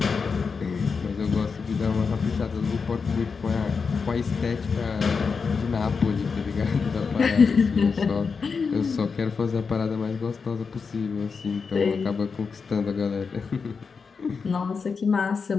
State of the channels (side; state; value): right; quieter; 5.3 dB